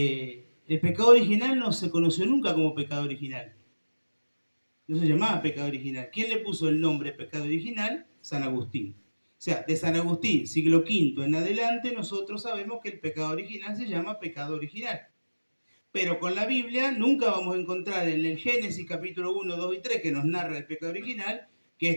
pecado original no se conoció nunca como pecado original. No se llamaba pecado original. ¿Quién le puso el nombre pecado original? San Agustín. O sea, de San Agustín, siglo V en adelante, nosotros sabemos que el pecado original se llama pecado original. Pero con la Biblia nunca vamos a encontrar en el Génesis capítulo 1, 2 y 3, que nos narra el pecado original, que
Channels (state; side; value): inverted; both; correlation -1.00